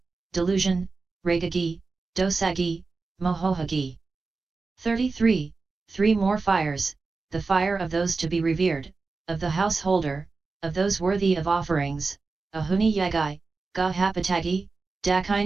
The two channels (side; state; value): left; quieter; 4.1 dB